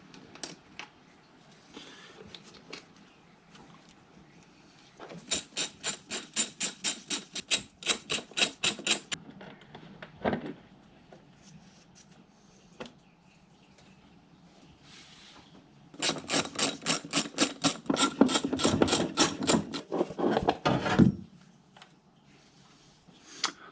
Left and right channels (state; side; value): identical; both; correlation 1.00